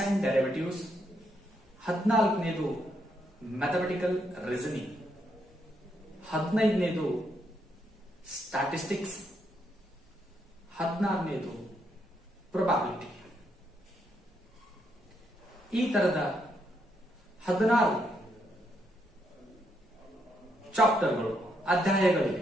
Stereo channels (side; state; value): both; normal; correlation 0.77